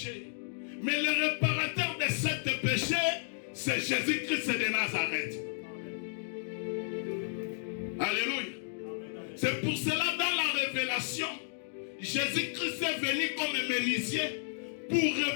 Mais le réparateur de ce péché, c'est Jésus-Christ de Nazareth. Alléluia. C'est pour cela, dans la révélation, Jésus-Christ est venu comme un menuisier pour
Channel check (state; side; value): silent; right; digital silence